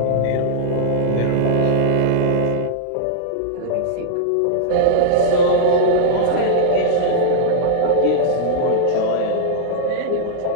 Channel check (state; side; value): different; both; correlation -0.01